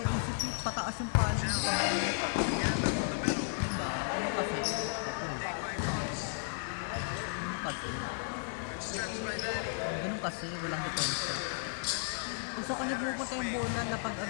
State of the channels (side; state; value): right; silent; 55 dB below the other